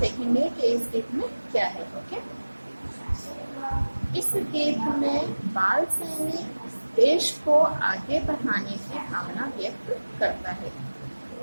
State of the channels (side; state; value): both; inverted; correlation -1.00